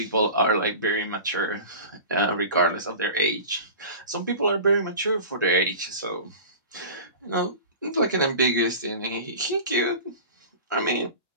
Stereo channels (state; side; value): inverted; both; correlation -0.35